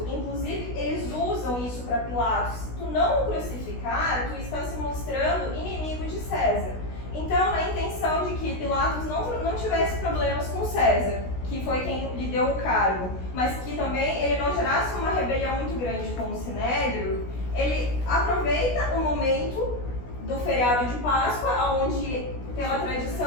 inclusive eles usam isso para Pilatos, se tu não o crucificar, tu está se mostrando inimigo de César. Então, na intenção de que Pilatos não tivesse problemas com César, que foi quem lhe deu o cargo, mas que também ele não gerasse uma rebelião muito grande com o Sinédrio, ele aproveita o momento do feriado de Páscoa, onde, pela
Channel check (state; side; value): late; right; 16 ms